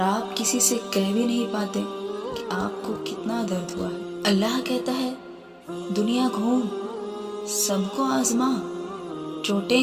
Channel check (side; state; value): both; identical; correlation 1.00